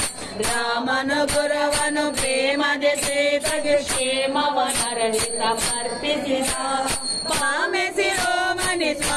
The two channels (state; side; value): identical; both; correlation 1.00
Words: ರಾಮನ ಪುರವನು ಪ್ರೇಮದೆ ಸೇತಗೆ ಕ್ಷೇಮವನರಗಿ ಸಮರ್ಪಿಸಿದ ಪಾಮೆ ಶಿರೋಮಣಿ